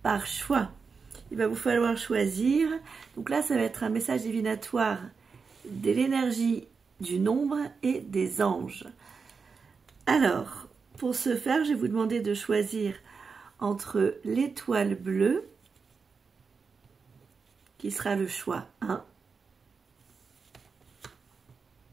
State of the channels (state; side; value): quieter; left; 5.2 dB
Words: par choix. Il va vous falloir choisir. Donc là, ça va être un message divinatoire de l'énergie du nombre et des anges. Alors, pour ce faire, je vais vous demander de choisir entre l'étoile bleue, qui sera le choix 1,